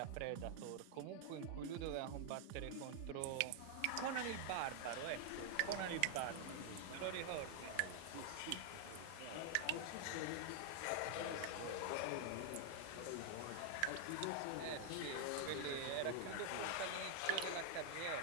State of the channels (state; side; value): different; both; correlation 0.00